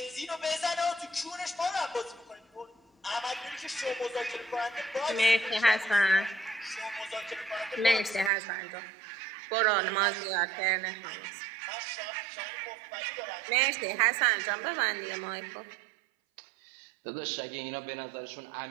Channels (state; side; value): drops out; left; at 8.3 s